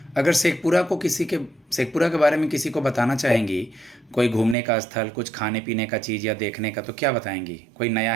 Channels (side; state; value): left; drops out; at 4.5 s